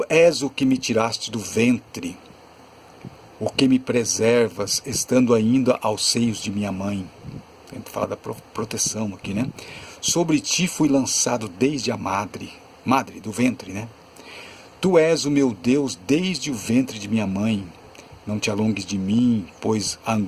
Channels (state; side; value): identical; both; correlation 1.00